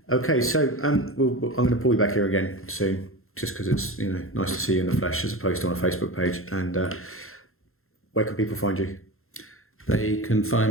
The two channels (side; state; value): right; late; 0.62 ms